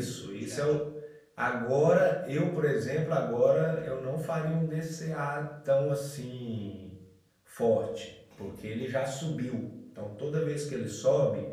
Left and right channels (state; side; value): identical; both; correlation 1.00